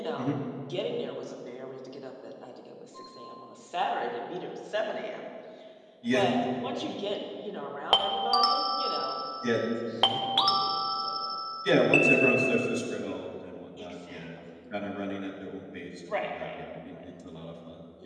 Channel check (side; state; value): both; identical; correlation 1.00